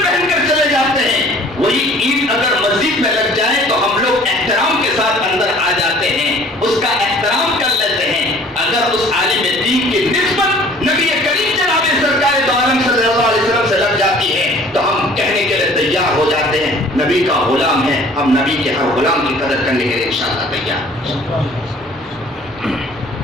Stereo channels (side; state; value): both; normal; correlation 0.51